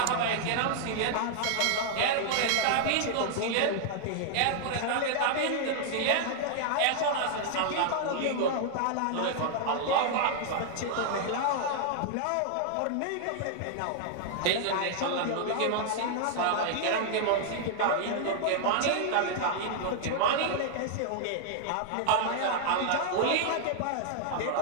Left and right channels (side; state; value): both; different; correlation 0.00